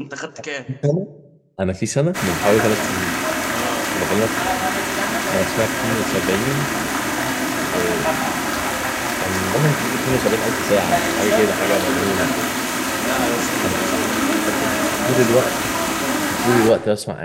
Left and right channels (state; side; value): identical; both; correlation 1.00